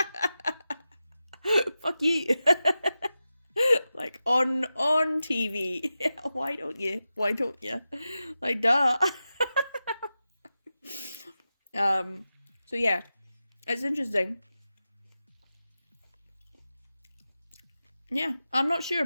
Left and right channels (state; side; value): inverted; both; correlation -0.92